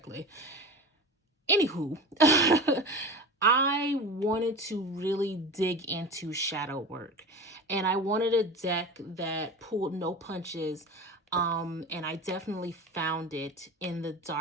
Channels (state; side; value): normal; both; correlation 0.30